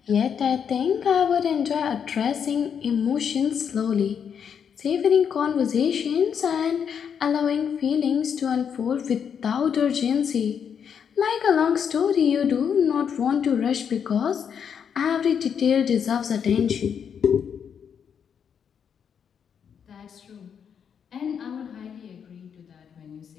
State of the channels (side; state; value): right; quieter; 7.5 dB